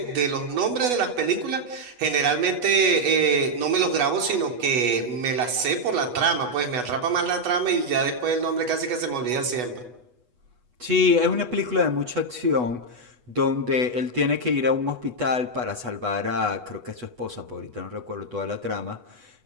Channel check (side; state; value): left; late; 8.1 ms